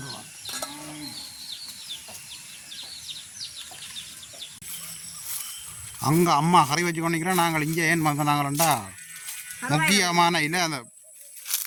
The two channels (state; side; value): identical; both; correlation 1.00